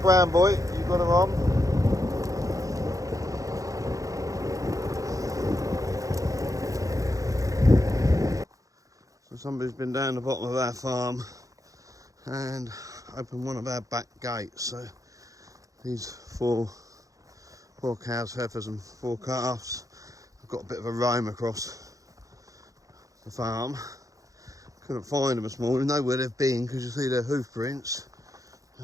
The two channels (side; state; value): left; late; 0.16 ms